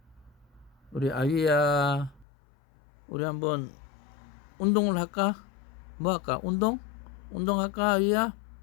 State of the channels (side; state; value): right; drops out; at 2.2 s